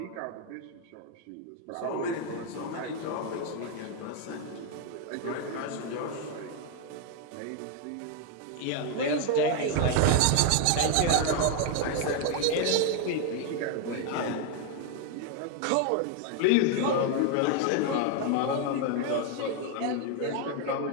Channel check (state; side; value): different; both; correlation 0.01